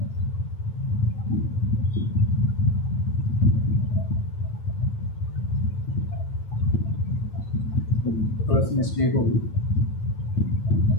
थोड़ा सा मिस्टेक होगी,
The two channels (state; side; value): late; right; 9.1 ms